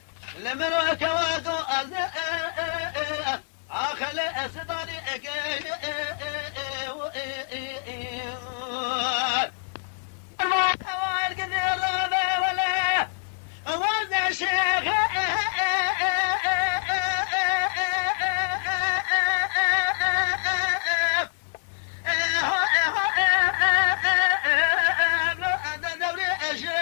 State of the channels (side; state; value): right; silent; 61 dB below the other